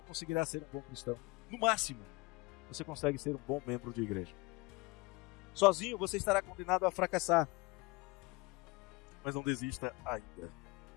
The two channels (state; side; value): quieter; right; 24.5 dB